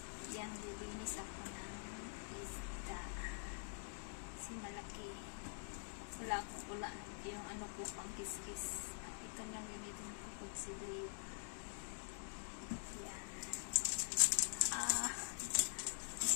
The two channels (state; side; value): silent; right; digital silence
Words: yan, lilinis ako ng isda. Kasi malaki. Wala yung ano ko, pang kiskis. Ito lang gamitin ko consider. Yan.